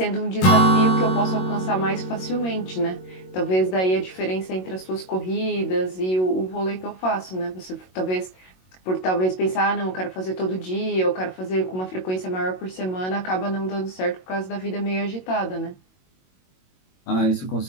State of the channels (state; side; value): late; right; 22 ms